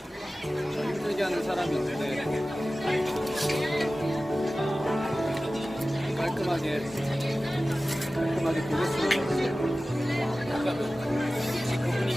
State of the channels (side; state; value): both; normal; correlation 0.96